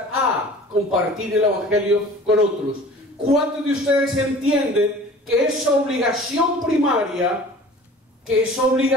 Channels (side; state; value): both; normal; correlation 0.45